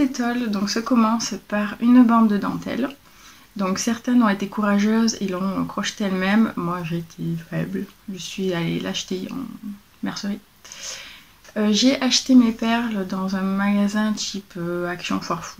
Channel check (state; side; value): identical; both; correlation 1.00